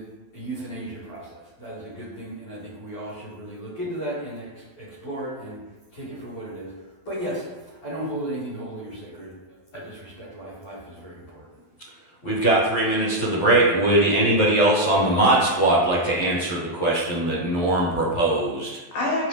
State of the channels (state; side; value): late; right; 12 ms